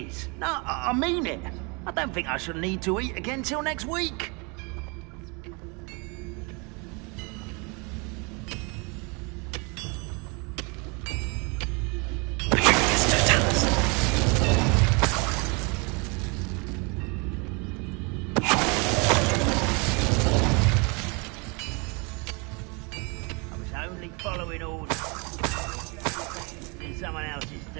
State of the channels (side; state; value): left; quieter; 30.8 dB